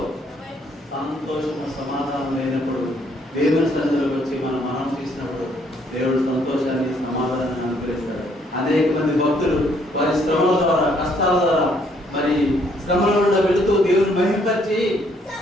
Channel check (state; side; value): normal; both; correlation 0.67